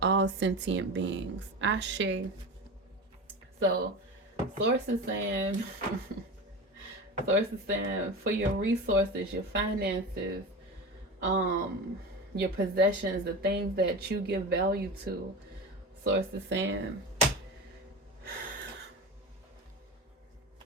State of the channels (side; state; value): both; normal; correlation 0.27